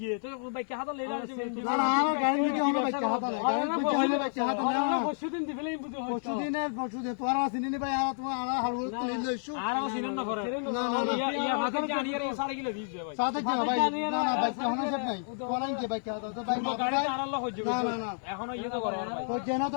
তো বাইকে হাত লহিরাস না না আর গাড়ির মধ্যে হনো বাইক হাত নাই গাড়ির মধ্যে হইলো বাইক হাত না পরশুদিন দিবেলেই বুঝো পরশুদিন তোরা চিনি ভাই আর তোমার আর হাল তুলি লইছো আর আমার সিনেন না করে না না ইয়া ভাতে জানি আর 4 কিলো দিছে ভাই সাথে কি ভাই না না বাইক হনো সব নাই তোরা কি বাইক হাত তো বাইক গাড়ি আর আল্লাহ হইছে না না না এখনো ইয়ে তো করে তো যেন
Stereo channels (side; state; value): right; silent; digital silence